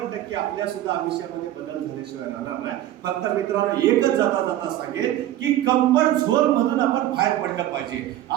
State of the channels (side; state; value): left; quieter; 13.3 dB